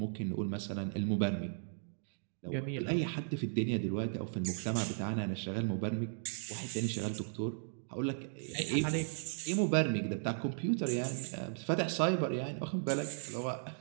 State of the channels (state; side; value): silent; left; digital silence